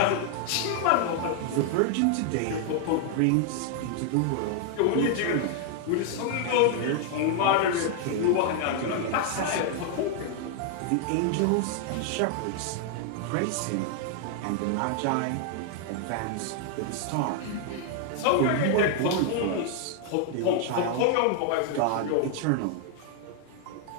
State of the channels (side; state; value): both; different; correlation 0.00